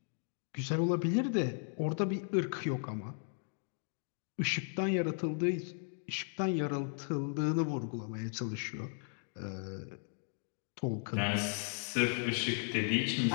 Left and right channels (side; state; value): right; silent; 54 dB below the other